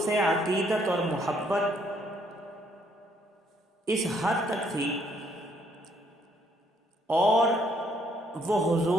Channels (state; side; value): normal; both; correlation 0.69